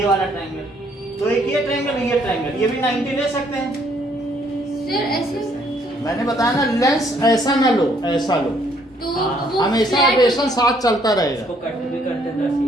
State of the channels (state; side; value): normal; both; correlation 0.66